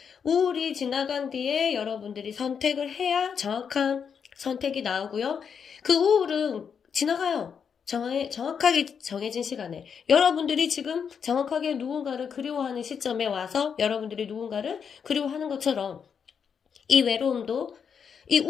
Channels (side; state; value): right; quieter; 6.9 dB